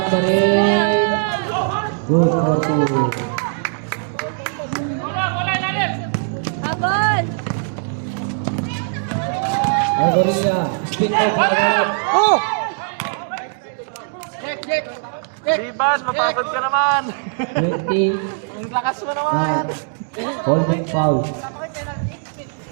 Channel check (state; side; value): silent; left; 66 dB below the other